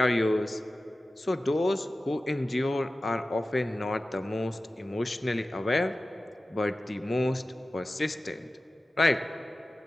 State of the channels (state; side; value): normal; both; correlation 0.96